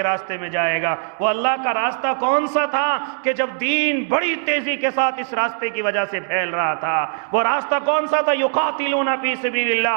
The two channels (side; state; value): left; silent; digital silence